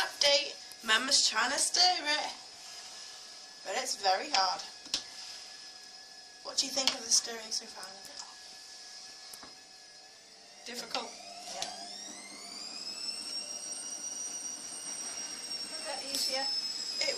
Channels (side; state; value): both; identical; correlation 1.00